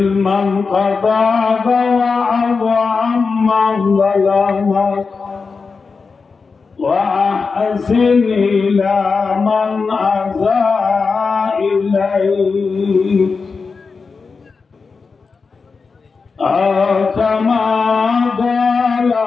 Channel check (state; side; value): quieter; right; 4.8 dB